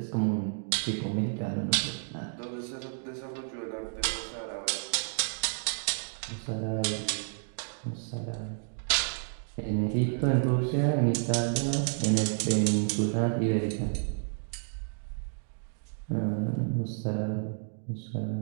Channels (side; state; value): left; silent; digital silence